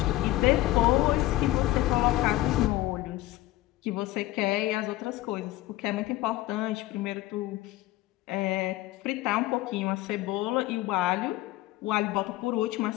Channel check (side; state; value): right; quieter; 16.5 dB